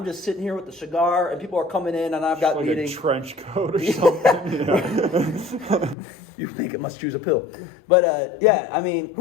just sitting here with the cigar, and people are coming in, and I've got like meetings. A trench coat or something. You think it must choose a pill, but yeah, I mean,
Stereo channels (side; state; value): right; drops out; at 6.0 s